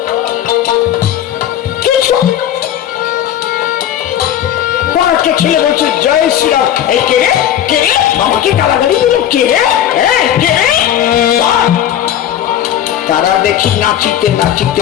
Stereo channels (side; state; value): right; quieter; 10.8 dB